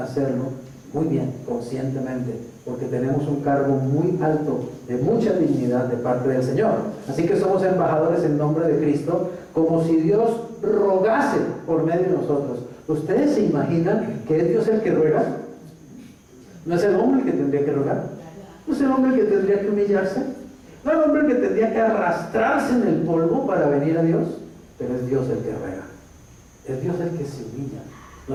muy bien, conscientemente, porque tenemos un cargo muy alto, de mucha dignidad de parte del Señor. Así que somos embajadores en nombre de Cristo, como si Dios rogase por medio de nosotros. ¿Ustedes se imaginan que es Dios el que ruega? ¿No es el hombre el que tendría que rogar? ¿No es el hombre el que tendría que humillarse? ¿No es el hombre el que tendría que arrastrarse en el polvo para venir a Dios? Pero es Dios el que ruega. Es Dios el que se humilla.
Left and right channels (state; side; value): identical; both; correlation 1.00